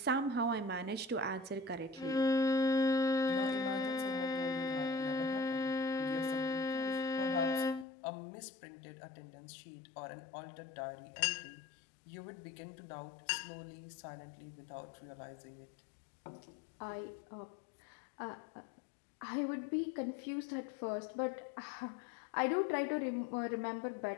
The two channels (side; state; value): right; drops out; at 7.9 s